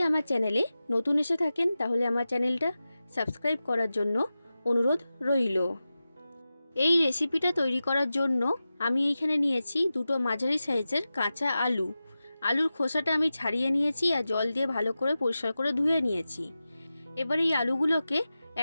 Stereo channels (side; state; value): both; inverted; correlation -0.94